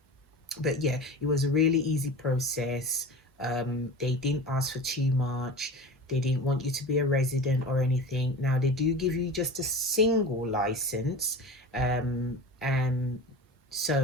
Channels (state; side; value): normal; both; correlation 0.33